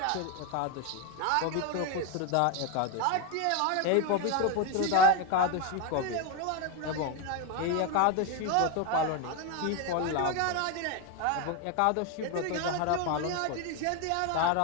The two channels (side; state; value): both; different; correlation 0.02